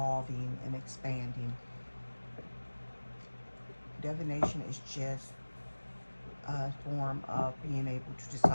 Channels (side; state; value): both; inverted; correlation -1.00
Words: and expanding. Divination is just a form of being able to